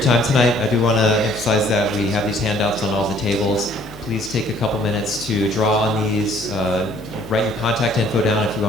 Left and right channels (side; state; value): left; noise; hum, 18 dB below the sound